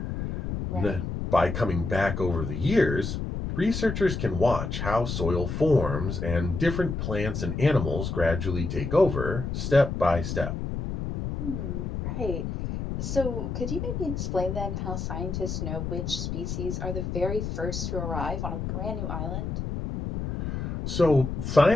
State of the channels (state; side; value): noise; left; rumble, 4 dB below the sound